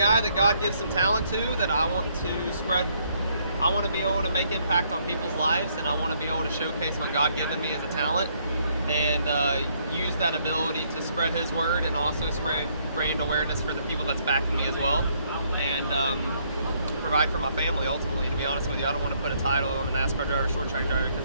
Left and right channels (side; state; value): both; inverted; correlation -0.69